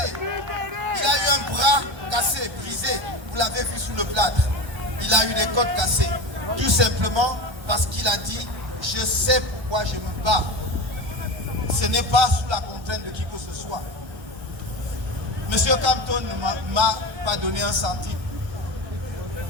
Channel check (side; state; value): left; late; 1.3 ms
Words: Il a eu un bras cassé, brisé. Vous l'avez vu sous le plâtre. Il a eu des côtes cassées. Tout simplement parce qu'il a dit « Je sais pourquoi je me bats ». Ce n'est pas sous la contrainte de qui que ce soit. Monsieur Campton ne m'a pas donné un centime.